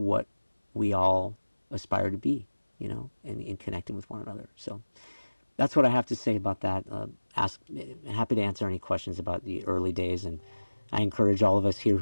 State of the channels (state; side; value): inverted; both; correlation -1.00